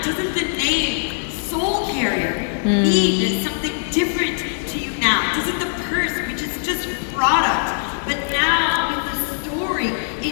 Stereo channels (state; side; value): silent; right; 65 dB below the other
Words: Doesn't the name Soul Carrier mean something different to you now? Doesn't the purse, which is just product, but now with the story,